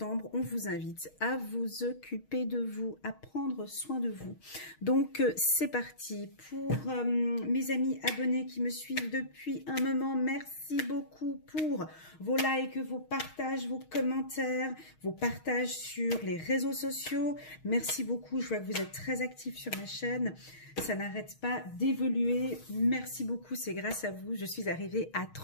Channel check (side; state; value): right; late; 6.4 ms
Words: on vous invite à vous occuper de vous, à prendre soin de vous. Donc, c'est parti. Pour mes amis abonnés qui me suivent depuis un moment, merci beaucoup pour vos likes, vos partages, vos commentaires, vos partages sur les réseaux sociaux. Merci beaucoup. Je vois que vous êtes très actifs sur ma chaîne. Ça n'arrête pas d'évoluer. Merci beaucoup. C'est grâce à vous. Je suis arrivée à